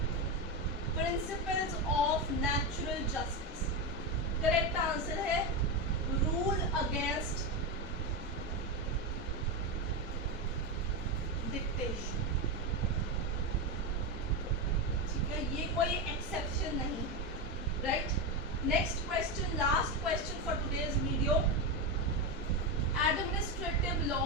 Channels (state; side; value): normal; both; correlation 0.12